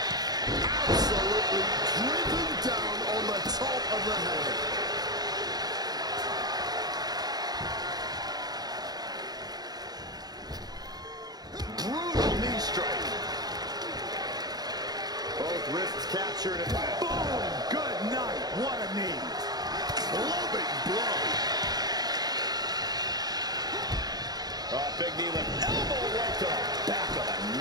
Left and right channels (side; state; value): left; late; 0.19 ms